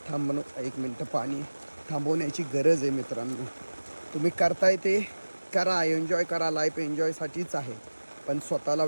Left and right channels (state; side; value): inverted; both; correlation -1.00